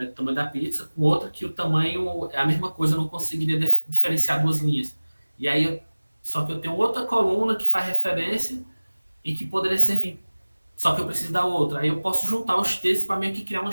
o tamanho da pizza com outra, que o tamanho é a mesma coisa, eu não conseguiria diferenciar duas linhas. E aí, só que eu tenho outra coluna que faz referência e que poderia servir, só que eu preciso da outra. Aí eu posso juntar os textos para meio que criar uma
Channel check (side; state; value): both; inverted; correlation -1.00